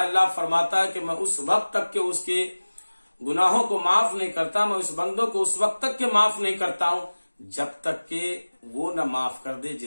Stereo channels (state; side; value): inverted; both; correlation -1.00